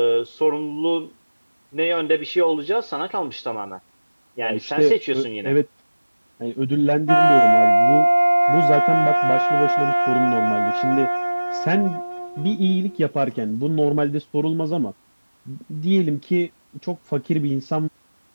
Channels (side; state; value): both; inverted; correlation -1.00